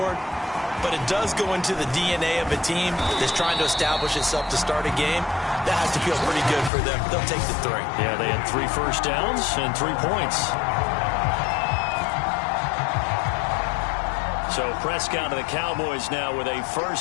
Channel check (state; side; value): drops out; right; at 6.7 s